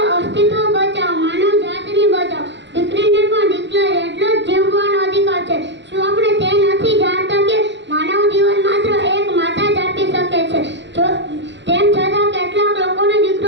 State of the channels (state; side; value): late; left; 0.52 ms